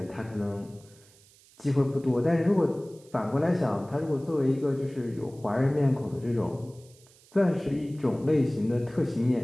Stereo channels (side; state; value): right; noise; hiss, 27 dB below the sound